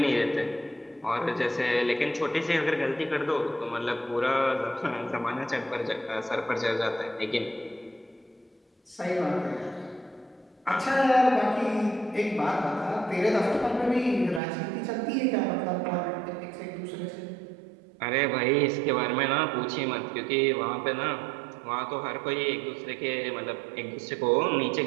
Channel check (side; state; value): left; drops out; at 14.4 s